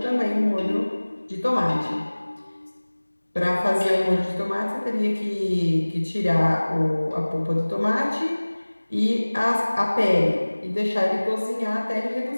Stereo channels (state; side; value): inverted; both; correlation -1.00